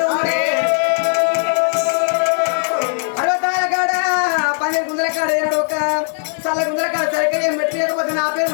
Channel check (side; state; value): right; silent; 67 dB below the other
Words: 60 కాడ 12 గుందల కాడ ఒక చల్ల గుందల కాడ సరిగ్గా ఏం పెట్టలేకపోతే నా